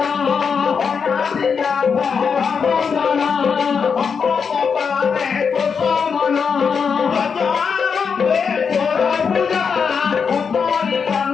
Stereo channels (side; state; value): right; quieter; 6.1 dB